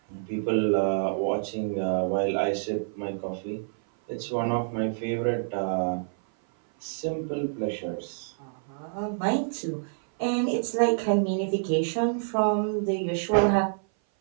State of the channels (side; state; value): left; silent; 57 dB below the other